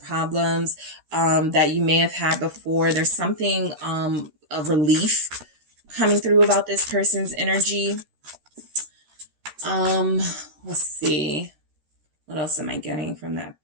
that you may have had before. There's something of relief coming through about this person's energy. Let's see. What else am I getting from that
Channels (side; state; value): left; late; 13 ms